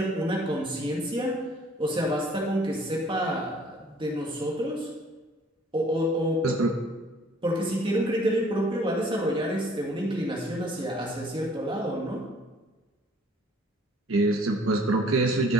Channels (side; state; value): both; normal; correlation 0.56